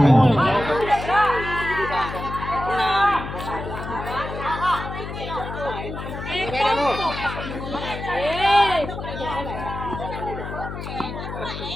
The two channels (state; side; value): noise; left; hum, 8 dB below the sound